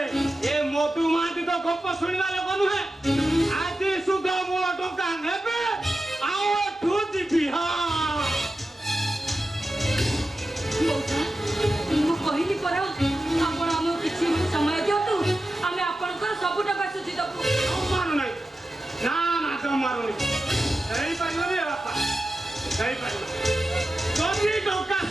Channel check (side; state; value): both; normal; correlation 0.92